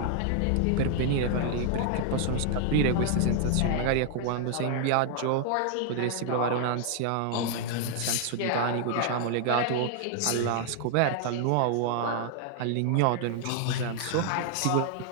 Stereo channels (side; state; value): both; different; correlation 0.00